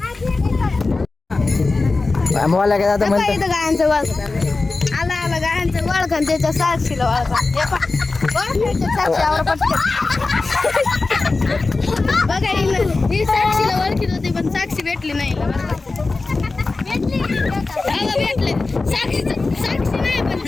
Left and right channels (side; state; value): right; quieter; 3.7 dB